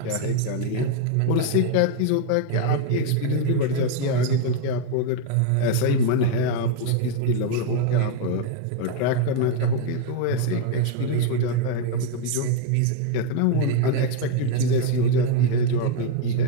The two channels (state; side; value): different; both; correlation 0.01